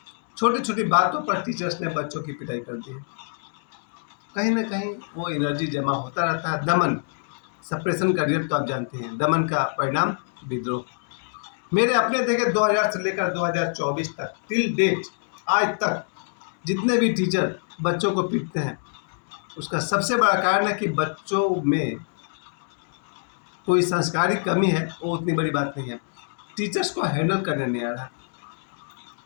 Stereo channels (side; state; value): right; silent; digital silence